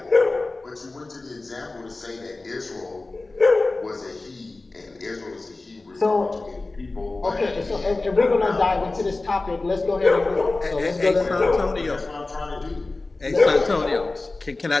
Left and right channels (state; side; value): quieter; right; 3.3 dB